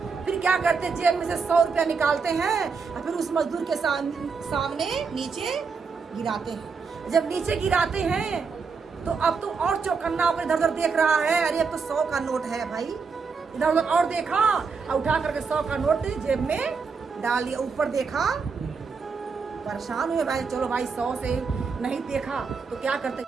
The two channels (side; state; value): left; quieter; 5.2 dB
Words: फिर क्या करते, जेब में से 100 रुपया निकालते हैं और फिर उस मजदूर के सामने नीचे गिराते हैं। जब नीचे गिराते हैं तो अब तो और चौकन्ना होकर इधर उधर देख रहा है, अरे अब तो 100 का नोट है भाई। इधर उधर और देखा और उठा करके 100 का नोट जेब में डाल दिया। ऊपर देखा, परेशान हुए भाई, चलो भाई 100 से नहीं देखा तो क्या करते,